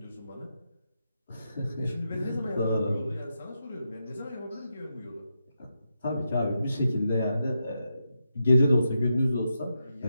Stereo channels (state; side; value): inverted; both; correlation -0.86